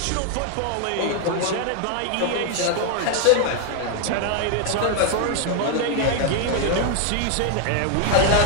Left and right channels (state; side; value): different; both; correlation 0.01